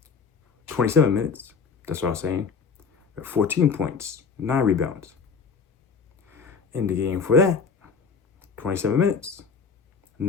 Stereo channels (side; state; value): right; quieter; 5.5 dB